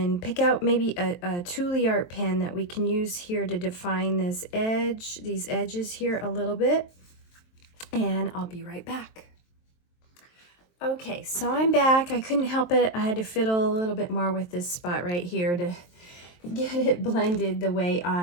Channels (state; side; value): late; right; 23 ms